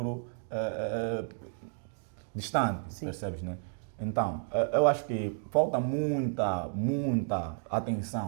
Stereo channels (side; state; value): left; silent; 57 dB below the other